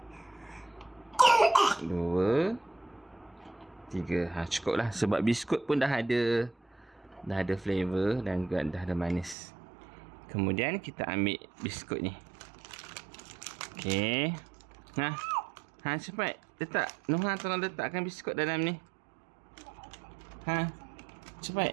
2, 3. Cukup lah. Sebab biskut pun dah ada flavor dan juga dah ada manis. Kemudian kita ambil biskut ni. Okey. Cepat. Letak. Noha tolong letakkan biskut dalam ni.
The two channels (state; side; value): drops out; left; at 9.3 s